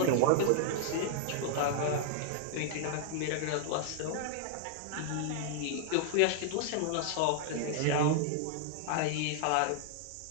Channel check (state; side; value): different; both; correlation 0.00